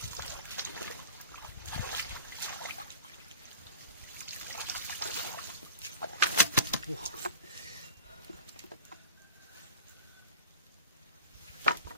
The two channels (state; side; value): inverted; both; correlation -0.35